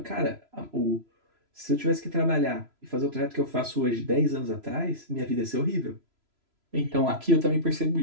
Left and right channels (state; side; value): late; left; 3.0 ms